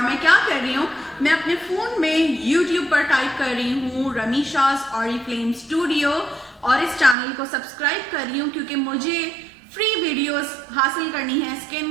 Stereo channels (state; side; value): drops out; left; at 7.2 s